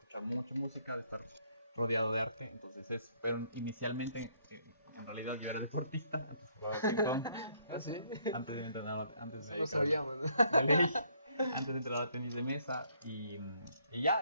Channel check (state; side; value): inverted; both; correlation -0.67